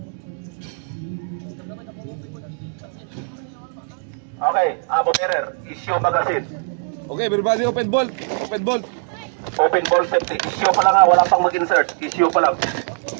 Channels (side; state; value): left; silent; 62 dB below the other